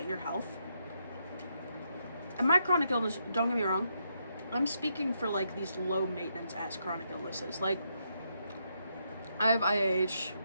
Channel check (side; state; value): both; inverted; correlation -0.79